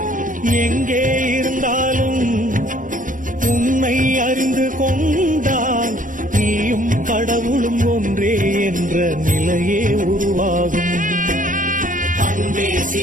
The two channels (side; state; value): left; late; 0.38 ms